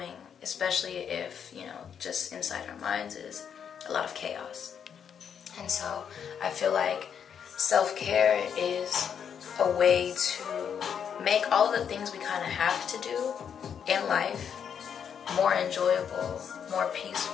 especially if, just inside our minds is a lot of chaos. And so I feel like self-care is a way to make all of the things we kind of have to do in life more enjoyable, more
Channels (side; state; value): right; quieter; 7.8 dB